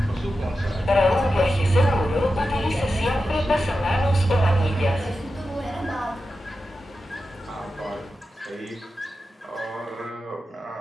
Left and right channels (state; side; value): normal; both; correlation 0.91